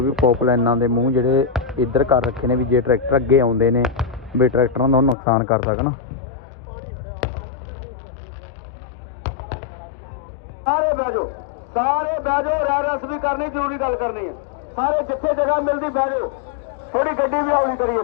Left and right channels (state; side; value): drops out; right; at 5.2 s